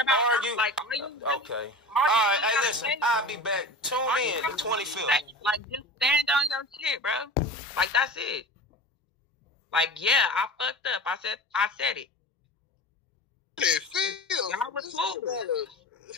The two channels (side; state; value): both; normal; correlation 0.33